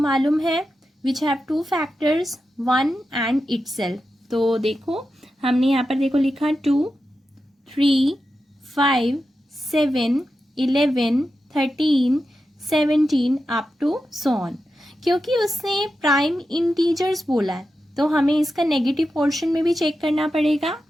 है which have two factors, 1 and itself. तो देखो हमने यहाँ पर देखो लिखा 2, 3, 5, 7, 11, 13, 17 अप टू सो ऑन. क्योंकि उसने प्राइम इंटीजर्स बोला है तो हमें इसका नेगेटिव पोर्शन में भी चेक करना पड़ेगा.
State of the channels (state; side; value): normal; both; correlation 0.90